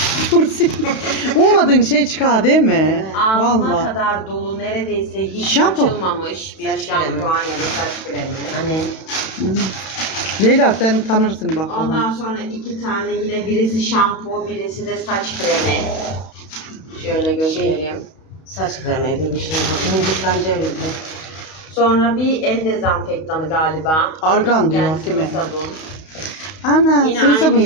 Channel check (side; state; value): right; late; 32 ms